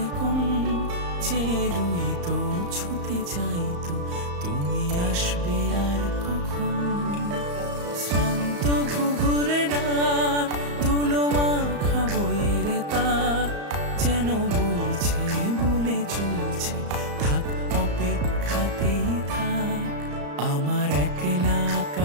কোণ চেয়ে রইতো, ছুতে চাইতো তুমি আসবে আর কখন। শ্রান্ত ঘুঘুরে ডাক, ধুলো মাখা বইয়ের তাক যেন বলছে, বলে চলছে থাক, অপেক্ষাতেই থাক। আমার একলা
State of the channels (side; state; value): left; late; 34 ms